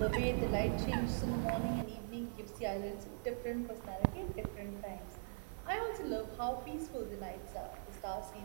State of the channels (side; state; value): left; silent; 50 dB below the other